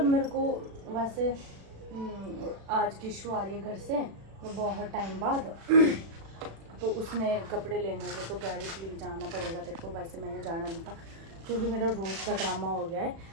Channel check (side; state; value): left; late; 36 ms